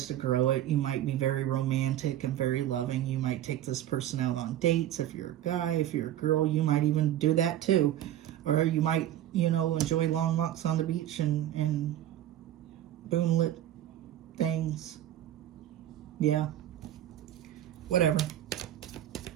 to grow it. You might be very romantic and very loving. You might take this person out on dates. If you're a guy, if you're a girl, you might even do that too. Or you might, enjoy long walks on the beach and moonlit things. Yeah. Whatever.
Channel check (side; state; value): left; quieter; 12.4 dB